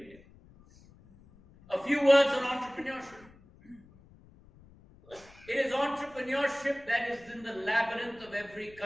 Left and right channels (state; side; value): noise; left; rumble, 25 dB below the sound